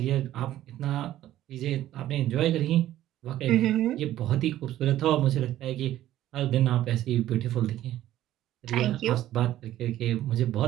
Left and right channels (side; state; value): left; quieter; 13.4 dB